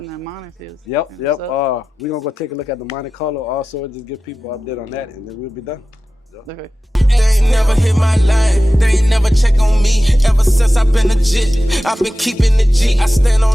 that money feels. Yep. We're gonna go take a look at the Monte Carlo also, just give people an update on that, and then we'll be done. Okay. They ain't never hit my line, they ain't never check on me. Ever since I've been legit, I've been keeping the G. I stand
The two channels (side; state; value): both; normal; correlation 0.94